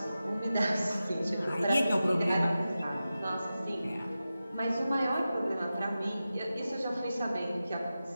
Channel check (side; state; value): both; inverted; correlation -0.93